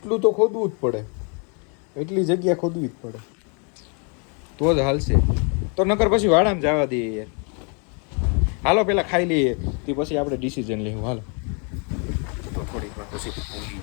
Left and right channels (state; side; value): quieter; right; 37.1 dB